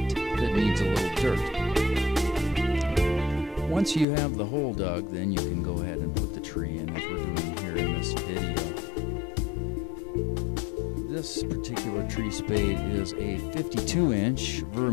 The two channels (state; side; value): drops out; right; at 4.0 s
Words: that needs a little dirt. Once you have the hole dug, then you can go ahead and put the tree in, as we're doing here in this video. This particular tree spade is a 52-inch